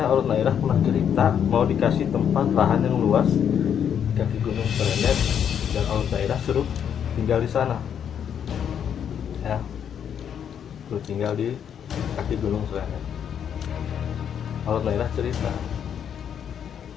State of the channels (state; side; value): quieter; right; 8.5 dB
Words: Olet Nairah pernah cerita mau dikasih tempat lahan yang luas di kaki Gunung Srenet, dan Olet Nairah suruh tinggal di sana ya, suruh tinggal di kaki Gunung Srenet. Olet Nairah cerita